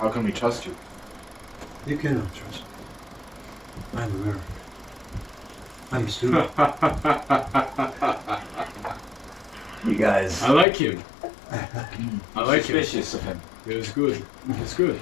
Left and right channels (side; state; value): right; drops out; at 10.7 s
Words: can we trust you? You cannot trust me. I'm American. I'm a student. You guys. I like him. I like him. Suspicious of him. It's good. It's good.